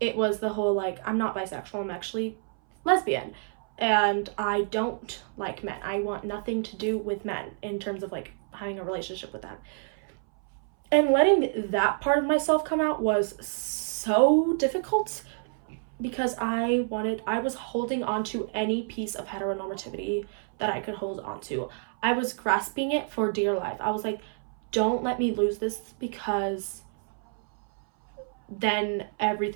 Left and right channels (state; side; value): silent; left; 59 dB below the other